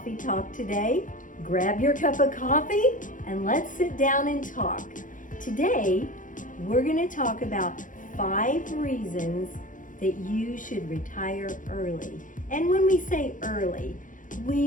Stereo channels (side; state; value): right; late; 0.38 ms